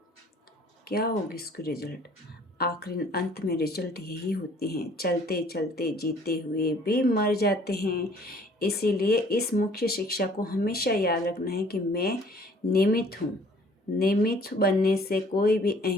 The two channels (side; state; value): both; normal; correlation 0.56